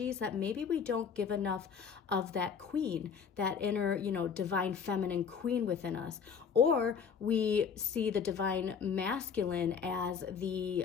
that maybe we don't give enough of that queen, that inner, divine feminine queen within us. Or we see the divine masculine as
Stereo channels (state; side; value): quieter; right; 6.6 dB